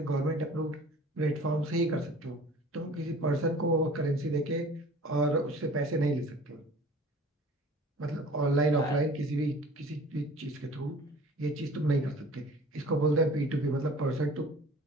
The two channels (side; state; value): both; normal; correlation 0.46